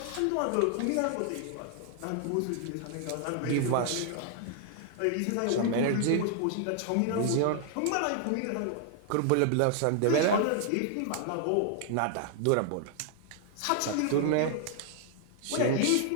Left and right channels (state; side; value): different; both; correlation 0.00